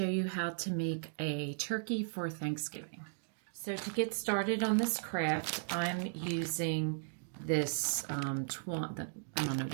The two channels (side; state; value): left; silent; digital silence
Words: you how to make a turkey for Thanksgiving. So to get started on this craft, I'm using this, I don't know